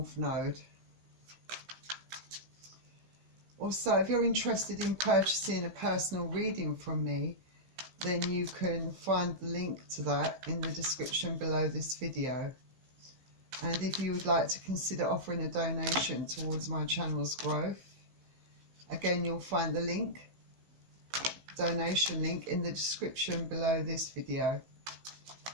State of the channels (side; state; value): left; late; 15 ms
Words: Node. Also, if you're interested in purchasing a personal reading from me, then you can find the link to that in the description below this video. And if you would like to consider offering a donation towards my channel's growth, again, you'll find the link, donation link, in the description below this video.